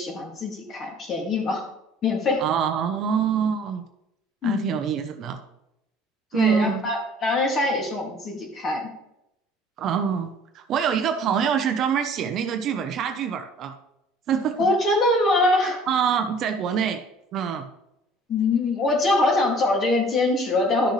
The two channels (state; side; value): normal; both; correlation 0.51